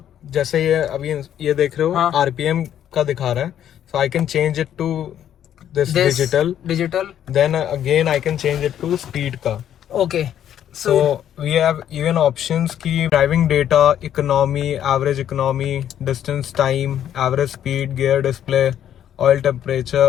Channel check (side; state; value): right; quieter; 10.3 dB